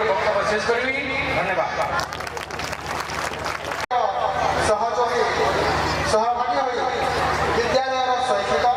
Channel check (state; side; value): identical; both; correlation 1.00